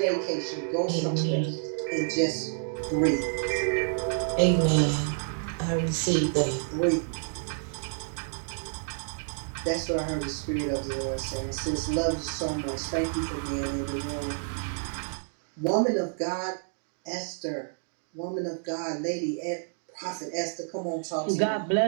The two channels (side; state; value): left; silent; digital silence